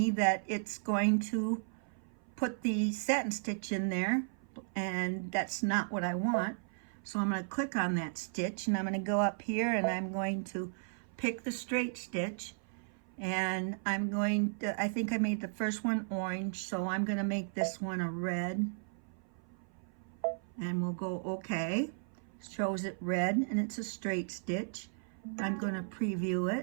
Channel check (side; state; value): left; silent; 54 dB below the other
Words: that it's going to put the satin stitch in there, and that's not what I want. So I'm going to click on that stitch, and I'm going to go up here, and I'm going to pick the straight stitch, and I'm going to, I think I made the first one orange, so I'm going to make this one a red, and we'll go okay. Shows it red, and it's a straight stitch. I'm going to preview